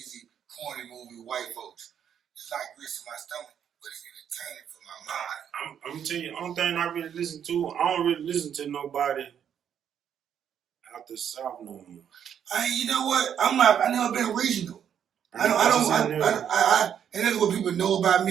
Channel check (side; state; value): left; quieter; 8.8 dB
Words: corny movie with white folks. It's not grits to my stomach, but it's entertaining for my mind. I'm gonna tell you, the only thing I really listen to, I don't really listen to nobody out the South no more. You know what? I never been regional. And that's what people know about